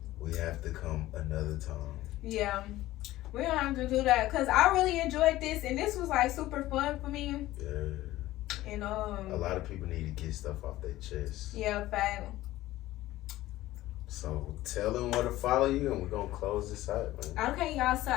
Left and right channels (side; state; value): right; quieter; 16.1 dB